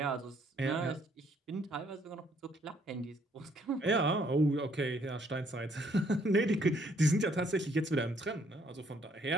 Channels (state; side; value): normal; both; correlation 0.67